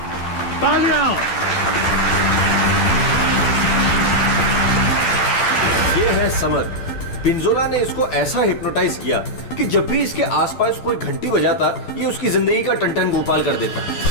तालियां। ये है समर। पिंजोला ने इसको ऐसा हिप्नोटाइज किया कि जब भी इसके आसपास कोई घंटी बजाता ये उसकी जिंदगी का टन गोपाल कर देता।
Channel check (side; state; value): right; late; 12 ms